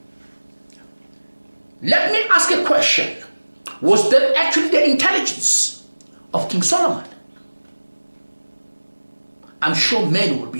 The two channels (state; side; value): inverted; both; correlation -1.00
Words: Let me ask a question. Was that actually the intelligence of King Solomon? I'm sure men will be